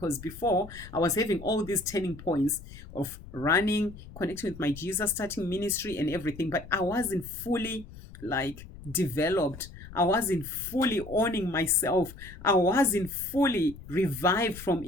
before I was having all these turning points of running, connecting with my Jesus, starting ministry and everything, but I wasn't fully developed. I wasn't fully owning myself. I wasn't fully revived from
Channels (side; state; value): left; noise; rumble, 16 dB below the sound